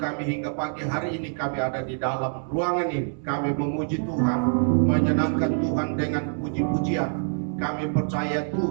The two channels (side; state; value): left; silent; digital silence